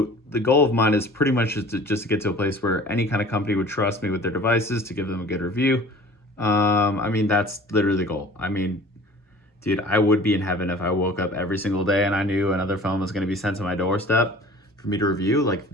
goal of mine is pretty much just to get to a place where any kind of company would trust me with their devices to give them a good review. I mean, that's literally the goal. I mean, dude, I would be in heaven if I woke up every single day and I knew another phone was going to be sent to my doorstep for me to review. Like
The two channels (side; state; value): both; normal; correlation 0.45